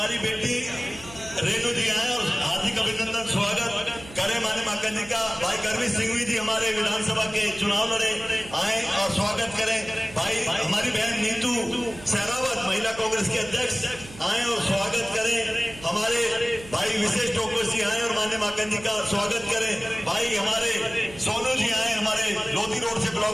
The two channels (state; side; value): noise; right; hum, 17 dB below the sound